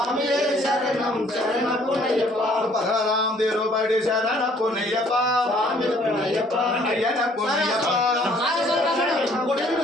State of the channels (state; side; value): normal; both; correlation 0.60